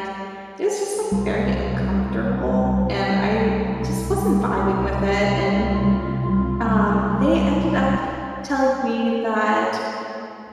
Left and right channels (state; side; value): identical; both; correlation 1.00